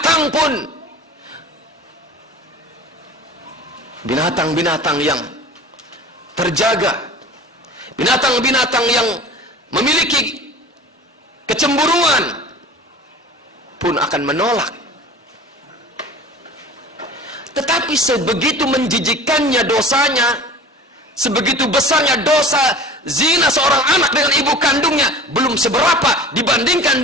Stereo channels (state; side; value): normal; both; correlation 0.40